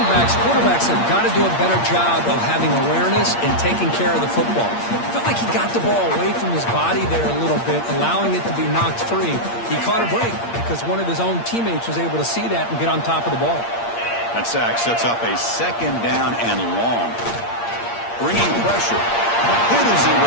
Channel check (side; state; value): right; late; 8.6 ms